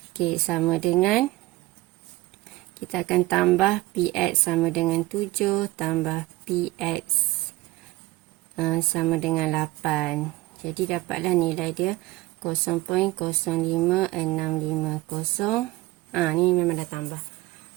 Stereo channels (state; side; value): quieter; left; 18.9 dB